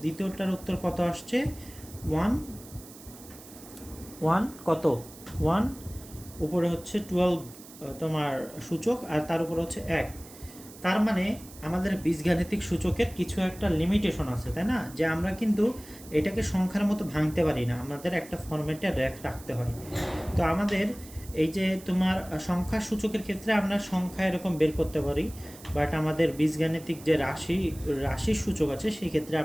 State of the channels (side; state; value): right; noise; hiss, 19 dB below the sound